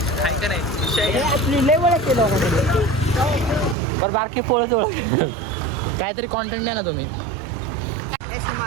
काय का नाही विषय आहे. आपली लय वेळ केलं पर बारकी पोळत काहीतरी कॉन्टेंट द्या ना तुम्ही. ऐसे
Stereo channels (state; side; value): drops out; left; at 3.8 s